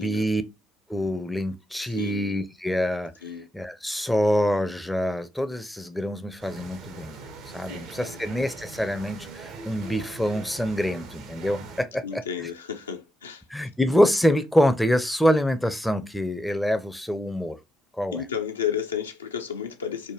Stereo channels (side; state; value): both; normal; correlation 0.84